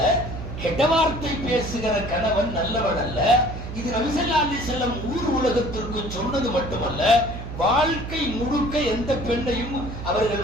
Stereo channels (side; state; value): right; noise; hum, 8 dB below the sound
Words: கெட்ட வார்த்தை பேசுகிற கணவன் நல்லவன் அல்ல. இது நபி ஸல்லல்லாஹு அலைஹி வஸல்லம் ஊர் உலகத்திற்கு சொன்னது மட்டுமல்ல, வாழ்க்கை முழுக்க எந்த பெண்ணையும்